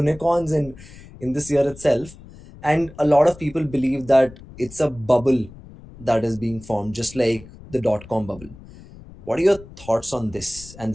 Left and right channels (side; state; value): left; noise; rumble, 19 dB below the sound